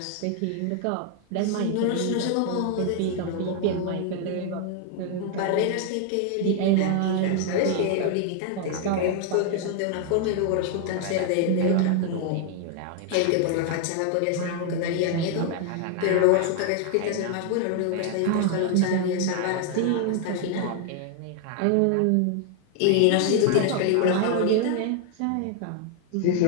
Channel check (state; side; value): different; both; correlation 0.00